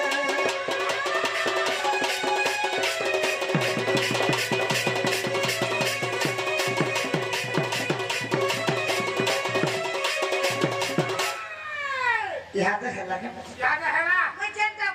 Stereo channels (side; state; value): both; identical; correlation 1.00